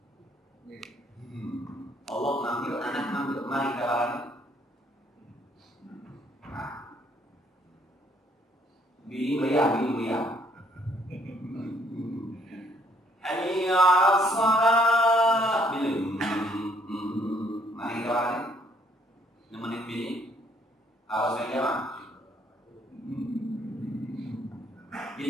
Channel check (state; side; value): normal; both; correlation 0.65